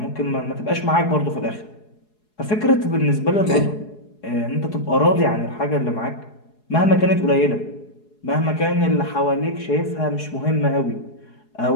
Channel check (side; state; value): right; late; 4.8 ms